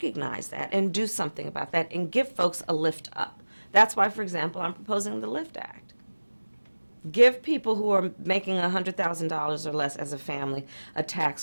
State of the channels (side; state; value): both; inverted; correlation -1.00